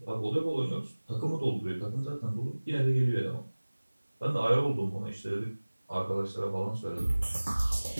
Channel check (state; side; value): inverted; both; correlation -1.00